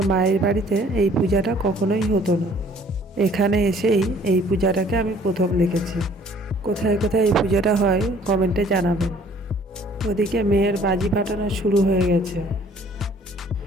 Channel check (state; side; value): normal; both; correlation 0.57